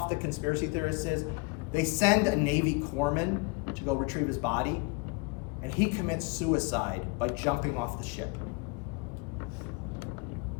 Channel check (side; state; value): right; quieter; 29.5 dB